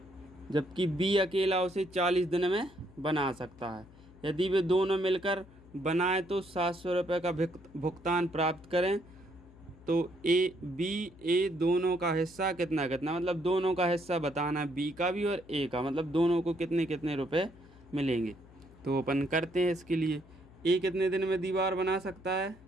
जबकि बी अकेला उसे 40 दिन में बना सकता है। यदि वे दोनों मिलकर बनाए तो 700 रुपये का भुगतान प्राप्त करें। तो ए दोनों का हिस्सा कितना कितना, मतलब दोनों का हिस्सा बताना, बी का भी और ए का, मतलब दोनों को कितने कितने रुपए मिलेंगे। तो अपन करते हैं इसके लिए। ए कितने दिन में दीवार बना सकता है,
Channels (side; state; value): left; noise; hum, 23 dB below the sound